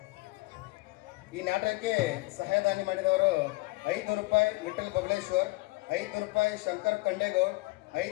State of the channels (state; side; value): quieter; right; 22.9 dB